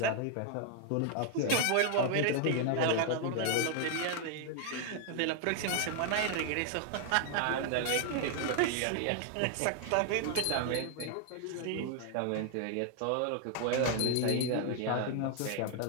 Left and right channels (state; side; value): different; both; correlation 0.00